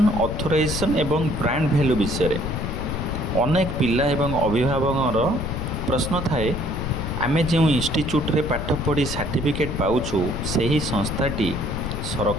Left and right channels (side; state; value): left; noise; rumble, 4 dB below the sound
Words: ऑथराइजेशन एवं ब्रांड वैल्यू विषय रे। अनेक पिला एवं अभिभावक प्रश्न थाए आमे जो इंस्टीट्यूट रे पाठ पढ़ी सर्टिफिकेट पाउछु सही संस्थाटी